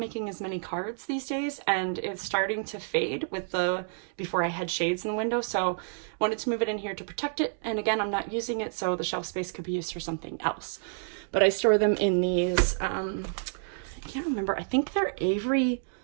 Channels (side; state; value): left; silent; digital silence